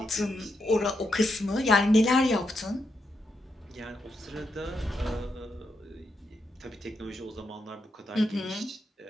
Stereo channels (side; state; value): both; normal; correlation 0.82